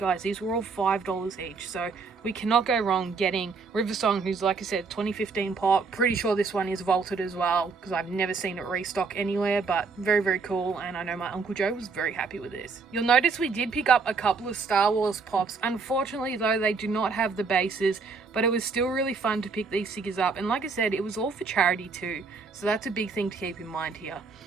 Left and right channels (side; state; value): left; quieter; 4.6 dB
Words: these were all $5 each. So we cannot go wrong getting River Song, who's, like I said, 2015 pop. Pretty sure this one is vaulted as well, because I've never seen it restock anywhere. But very cool. And I know my Uncle Joe was very happy with this. You'll notice we did pick up a couple of Star Wars pops. Unfortunately, though, they do not have the bases. But it was still really fun to pick these figures up, and like I said, it was all for charity too, so that's a big thing to keep in mind here.